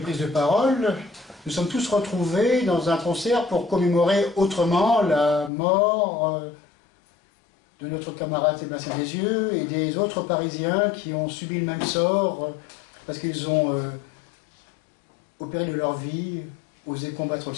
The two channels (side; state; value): right; drops out; at 5.5 s